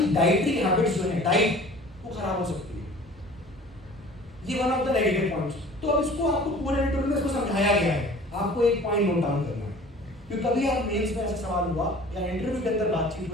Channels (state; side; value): normal; both; correlation 0.46